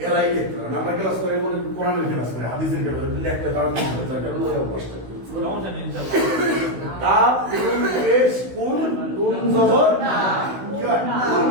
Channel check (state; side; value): late; left; 16 ms